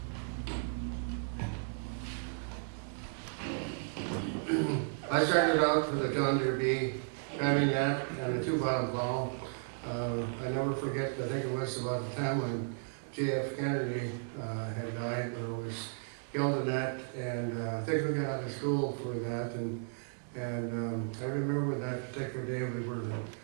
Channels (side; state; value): left; silent; digital silence